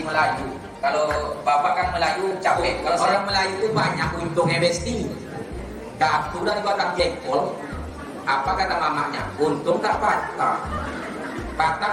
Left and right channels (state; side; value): identical; both; correlation 1.00